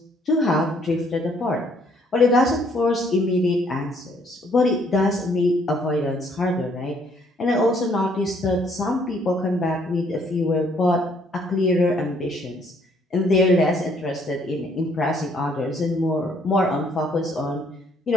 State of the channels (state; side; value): normal; both; correlation 0.65